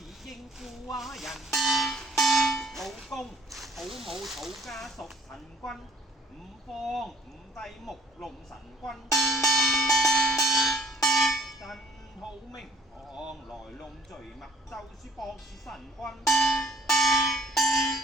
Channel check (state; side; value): normal; both; correlation 0.58